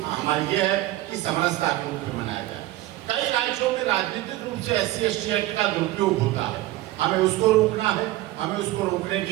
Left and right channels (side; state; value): left; quieter; 16.5 dB